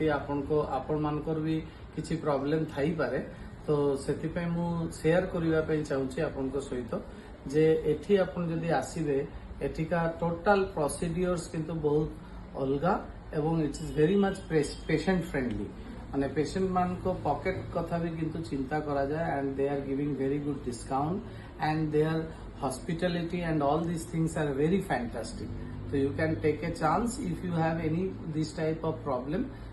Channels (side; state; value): both; identical; correlation 1.00